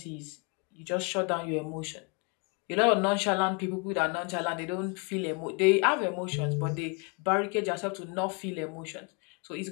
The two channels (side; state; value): right; quieter; 32.8 dB